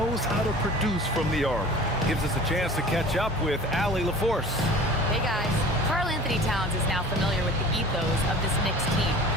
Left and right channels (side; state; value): both; normal; correlation 0.42